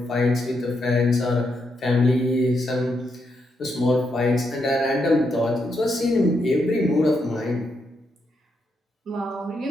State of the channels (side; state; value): both; normal; correlation 0.81